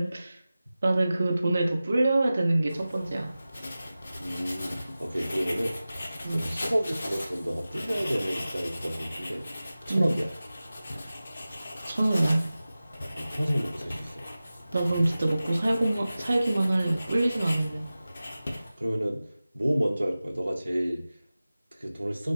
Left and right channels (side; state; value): both; inverted; correlation -0.96